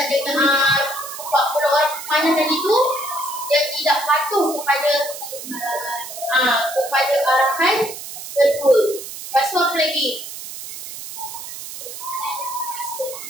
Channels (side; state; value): right; noise; hiss, 10 dB below the sound